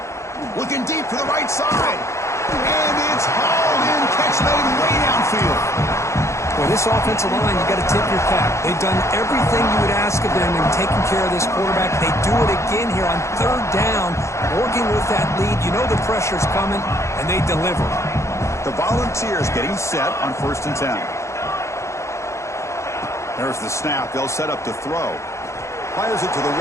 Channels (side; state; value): right; late; 0.14 ms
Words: Looking deep to the right side. And it's hauled in. Catch made way downfield. Well, this offensive line, you got to tip your cap. They've done everything you would ask of them in taking care of this quarterback. They do it again here on 3rd down, working with that lead. You know the pressure's coming, and they deliver. The Volunteers getting set on 1st and 10. There's the snap. They'll set up to throw. Fires it to the